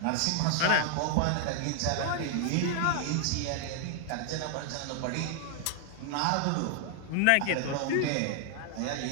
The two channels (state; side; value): different; both; correlation 0.00